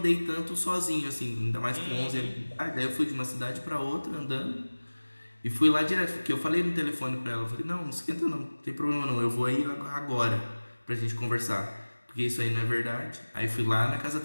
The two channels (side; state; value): both; inverted; correlation -1.00